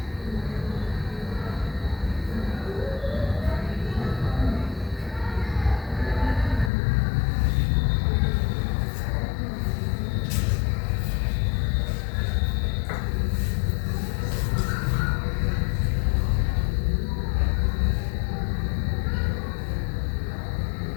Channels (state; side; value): drops out; right; at 6.7 s